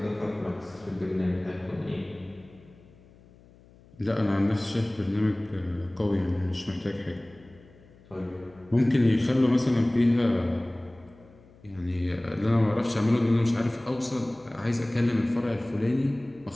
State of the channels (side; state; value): left; noise; hum, 26 dB below the sound